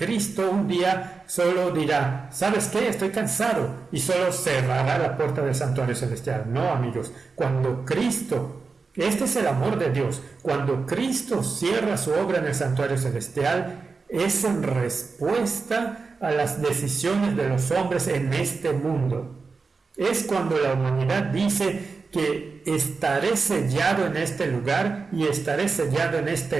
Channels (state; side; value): quieter; left; 4.5 dB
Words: un día solo dirá: ¿sabes qué? Estoy cansado, y solo cerrará la puerta del santuario celestial. No, amigos, cuando Cristo, este es el amor de Dios, cuando Cristo cierra su obra en el santuario celestial, es en respuesta a las decisiones de los hombres en este mundo. Es cuando la humanidad dice que estaré sellado en este lugar y estaré sellado en